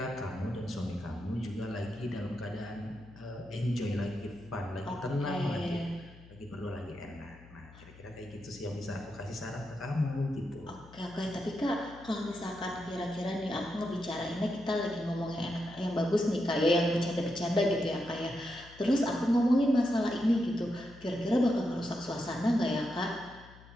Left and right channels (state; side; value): noise; left; hum, 21 dB below the sound